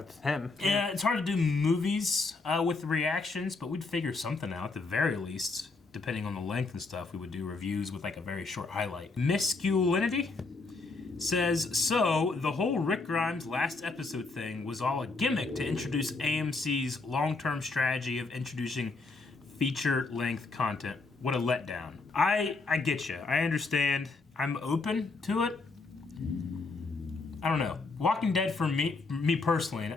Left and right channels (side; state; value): right; quieter; 3.8 dB